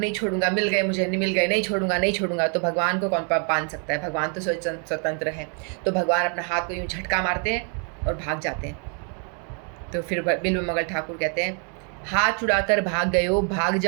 छोड़ूंगा, मिल गए मुझे, मिल गए, नहीं छोड़ूंगा नहीं छोड़ूंगा। तो भगवान को कौन बांध सकता है, भगवान तो स्वतंत्र है। तो भगवान अपना हाथ को यूँ झटका मारते हैं और भाग जाते हैं। तो फिर बिल्व मंगल ठाकुर कहते हैं, हाथ छुड़ाकर भाग गए हो, भाग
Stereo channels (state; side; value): quieter; left; 39.9 dB